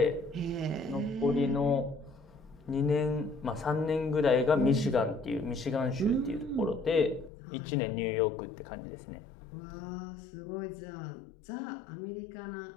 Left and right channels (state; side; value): drops out; right; at 7.3 s